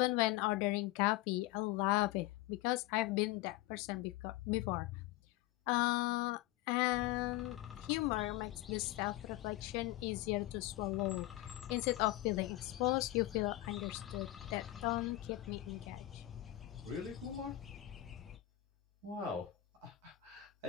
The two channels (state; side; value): quieter; right; 16.6 dB